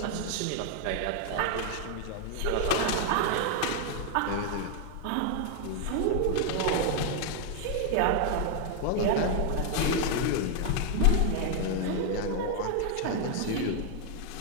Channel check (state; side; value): different; both; correlation 0.00